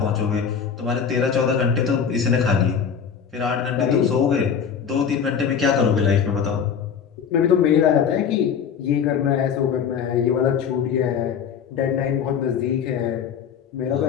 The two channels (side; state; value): right; quieter; 7.2 dB